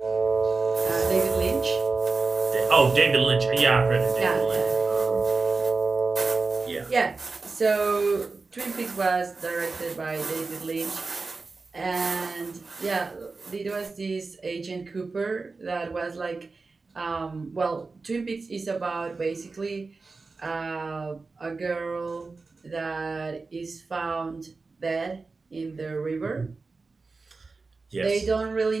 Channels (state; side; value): quieter; left; 4.0 dB